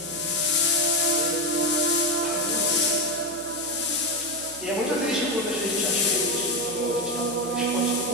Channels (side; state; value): right; noise; hum, 21 dB below the sound